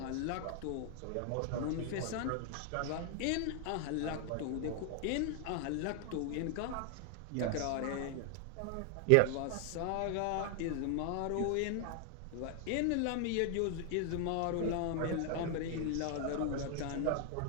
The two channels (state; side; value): different; both; correlation 0.00